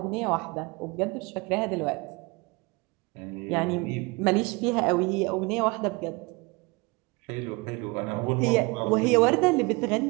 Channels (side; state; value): left; quieter; 25.9 dB